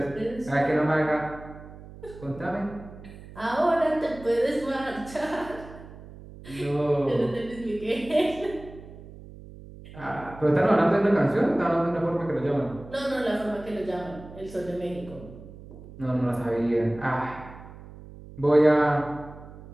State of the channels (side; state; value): right; noise; hum, 17 dB below the sound